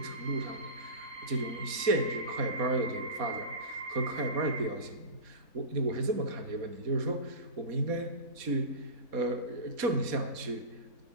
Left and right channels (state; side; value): late; left; 4.2 ms